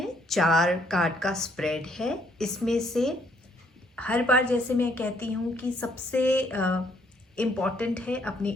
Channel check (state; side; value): normal; both; correlation 0.68